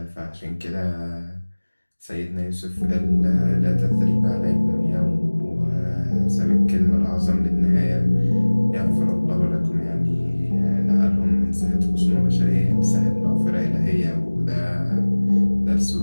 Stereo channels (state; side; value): inverted; both; correlation -1.00